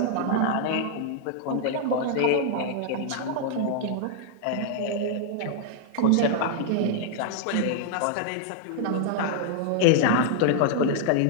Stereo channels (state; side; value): different; both; correlation 0.00